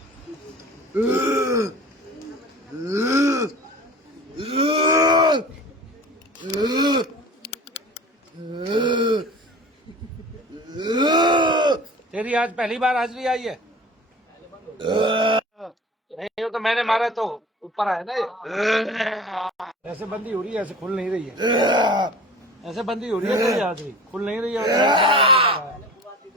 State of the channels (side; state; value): both; normal; correlation 0.40